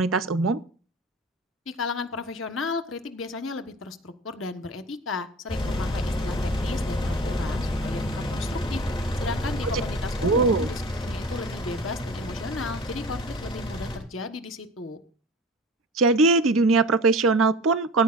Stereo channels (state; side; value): normal; both; correlation 0.37